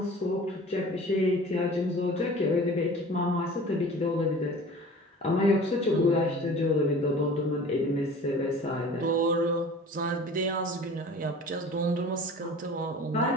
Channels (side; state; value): both; normal; correlation 0.42